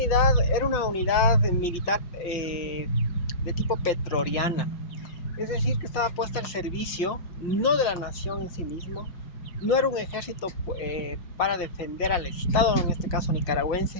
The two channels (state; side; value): late; right; 5.7 ms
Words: era una unidad militar de tipo petroriana, es decir, que estaba puesta al servicio no de la nación en sí mismo, no era un ejército para defender al Estado, en este caso